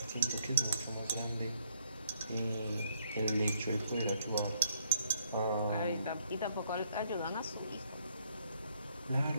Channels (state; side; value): inverted; both; correlation -0.68